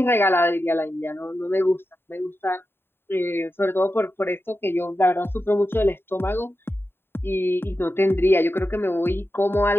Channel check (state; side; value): late; right; 0.11 ms